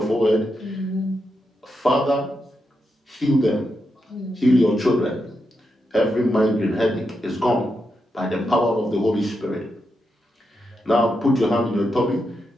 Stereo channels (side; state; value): both; normal; correlation 0.85